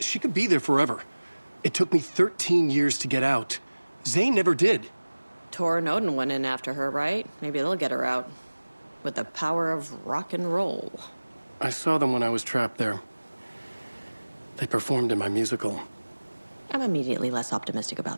she could be there forever. It took me 13 years to get out. Zane never did. Tor and Odin went in after her, right? Maybe they'll get her out. With the power of rock and roll. I saw them when I was trapped there. They performed in my musical. I'm immediately less optimistic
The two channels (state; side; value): inverted; both; correlation -1.00